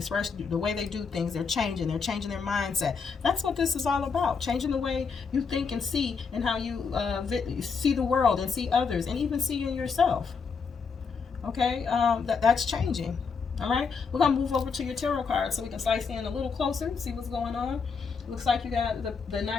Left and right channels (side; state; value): right; quieter; 5.4 dB